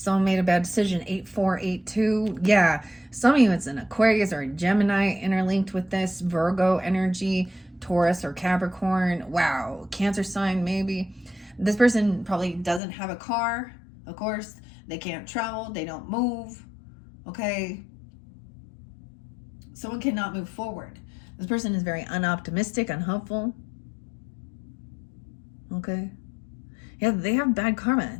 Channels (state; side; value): drops out; right; at 12.8 s